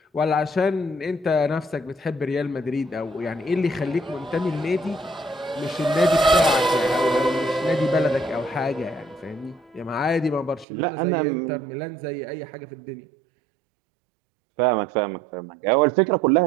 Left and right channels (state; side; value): drops out; left; at 10.7 s